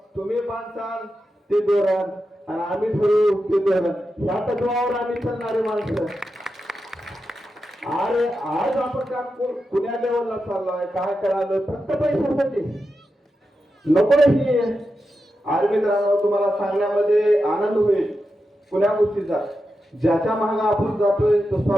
तुम्ही बांधसाल ते धोरण आणि आम्ही ठरवू ते धोरण, ह्या तत्वावर आम्ही चालणारे माणसं। अरे आज आपण का पुण्या लेवलला चाललोय, काय करायला फक्त पैशासाठी नको ही। अरे मित्रांनो, तुम्हाला सांगण्यामध्ये आनंद होईल पुण्या गोष्टीचा। ज्याच्या मागे आपण जातोय तो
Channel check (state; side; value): normal; both; correlation 0.89